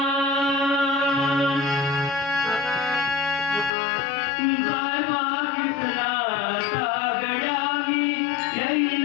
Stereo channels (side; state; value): right; drops out; at 3.7 s